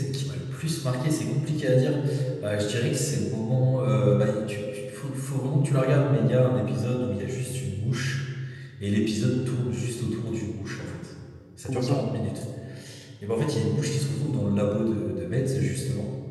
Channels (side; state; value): both; identical; correlation 1.00